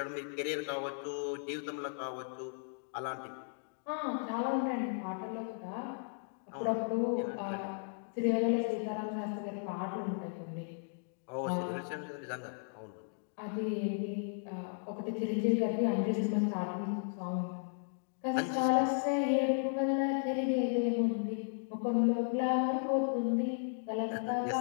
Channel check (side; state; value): right; silent; digital silence